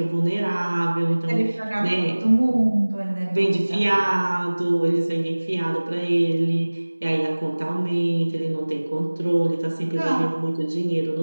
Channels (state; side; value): inverted; both; correlation -1.00